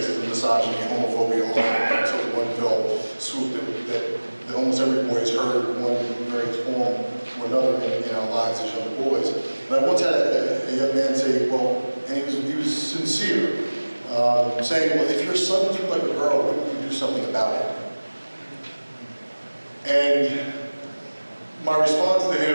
misogyny, homophobia, all that sort of one fell swoop that almost every boy has heard in one various form or another in our lives as young boys. And I once had a young man say, well, and he was sincere, saying, well, if your son threw like a girl, wouldn't you do something about it? And my response to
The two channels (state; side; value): inverted; both; correlation -1.00